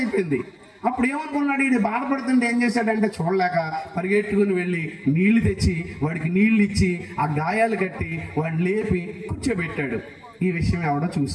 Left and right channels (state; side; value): identical; both; correlation 1.00